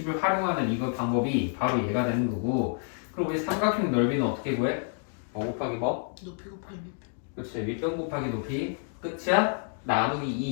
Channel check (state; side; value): silent; right; 59 dB below the other